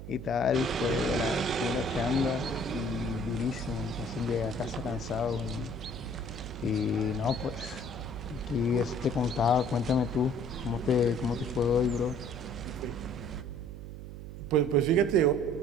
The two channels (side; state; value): right; noise; hum, 11 dB below the sound